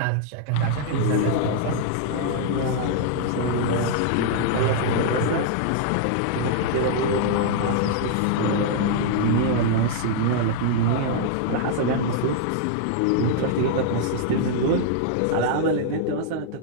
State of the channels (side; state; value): both; different; correlation -0.01